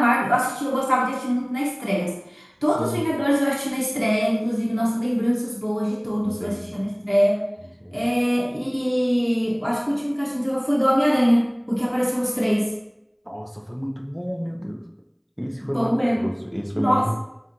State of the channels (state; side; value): identical; both; correlation 1.00